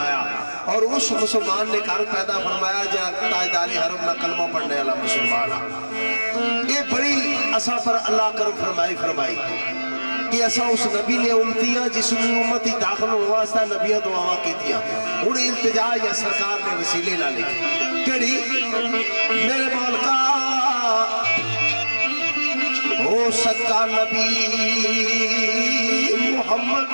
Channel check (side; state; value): both; inverted; correlation -1.00